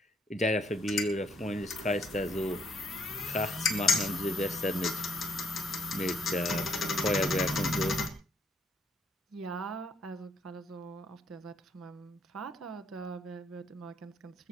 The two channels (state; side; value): normal; both; correlation 0.70